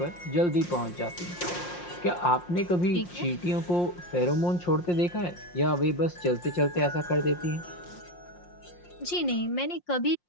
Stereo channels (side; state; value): right; late; 5.6 ms